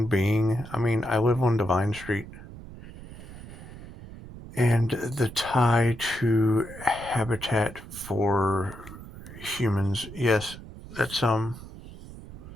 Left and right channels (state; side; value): noise; right; rumble, 15 dB below the sound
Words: being. I mean, I live on Divine Street, and the tie to habitat for humans. Yes, that's